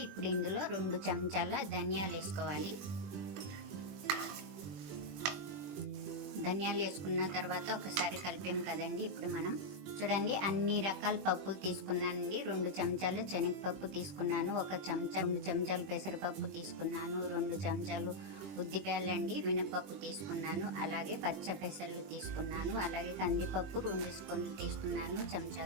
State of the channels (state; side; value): late; left; 21 ms